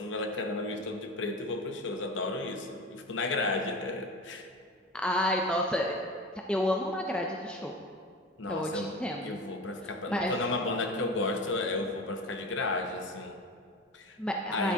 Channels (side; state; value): both; normal; correlation 0.30